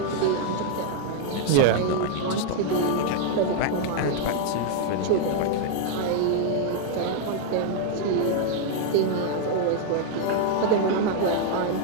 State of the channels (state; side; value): different; both; correlation 0.00